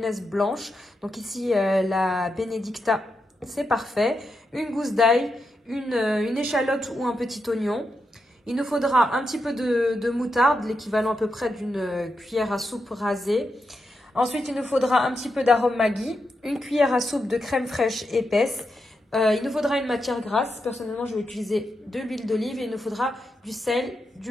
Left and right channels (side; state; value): both; normal; correlation 0.86